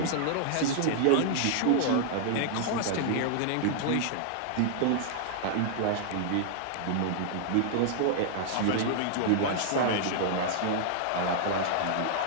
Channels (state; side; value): different; both; correlation -0.01